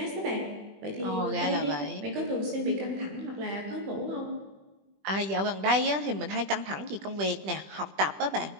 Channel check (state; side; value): late; left; 20 ms